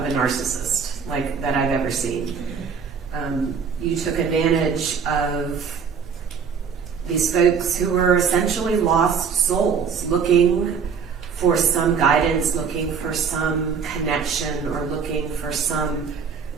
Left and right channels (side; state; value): left; quieter; 6.2 dB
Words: a narcissist, like that I've ever seen. You took advantage of these folks who were essentially lost souls, looking for some guidance, looking for some connection, or looking for some